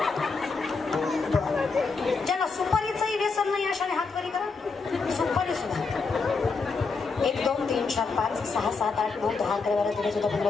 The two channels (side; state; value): right; quieter; 4.5 dB